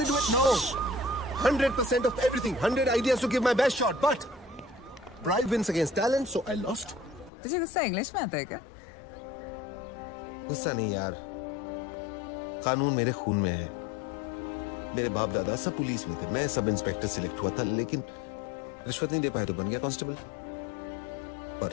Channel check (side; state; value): right; drops out; at 7.3 s